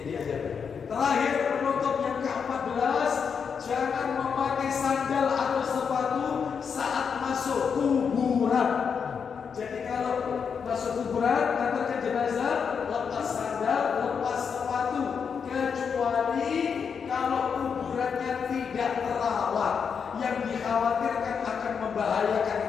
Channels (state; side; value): quieter; right; 6.5 dB